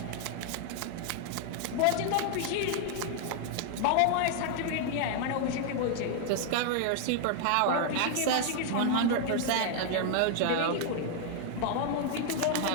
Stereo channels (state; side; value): different; both; correlation 0.00